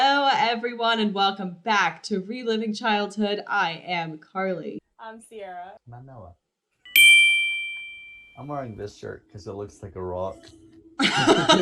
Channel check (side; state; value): both; identical; correlation 1.00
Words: everyone, and welcome back to Reliving Childhood. I am Carly. I'm Sierra. I'm Noah. I'm wearing this shirt because it looks like a rock.